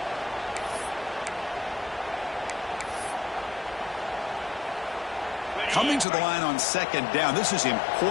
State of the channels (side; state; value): right; drops out; at 6.1 s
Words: Coming to the line on second down. This is